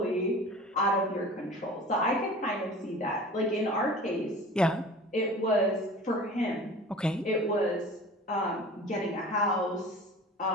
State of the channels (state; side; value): normal; both; correlation 0.40